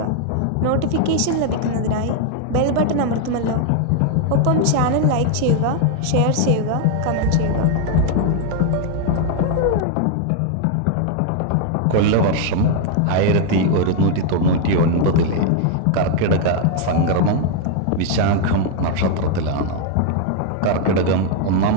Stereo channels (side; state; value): both; different; correlation 0.00